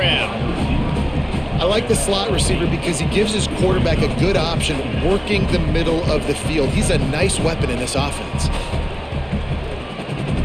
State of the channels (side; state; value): both; identical; correlation 1.00